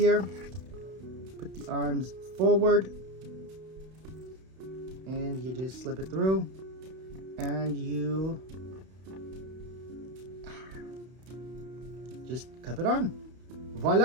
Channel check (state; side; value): late; left; 31 ms